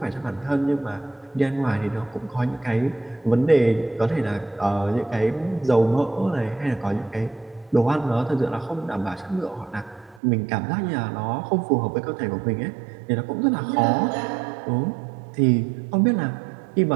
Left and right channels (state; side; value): drops out; left; at 10.2 s